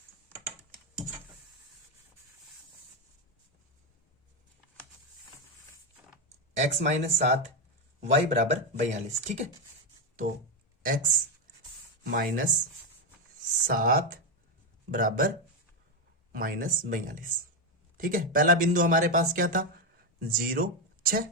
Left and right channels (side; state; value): both; normal; correlation 0.08